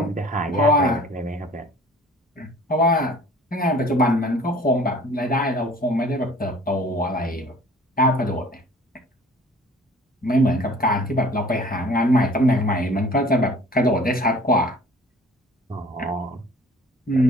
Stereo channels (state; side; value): normal; both; correlation 0.49